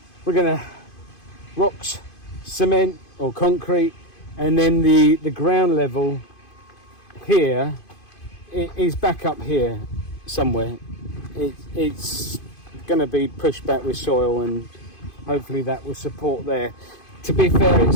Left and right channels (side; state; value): right; late; 2.5 ms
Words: We're gonna rocks, cement or concrete, and then the ground level here is back up here somewhere. It's gonna be pushed back with soil, and hopefully that will support there. To be fair,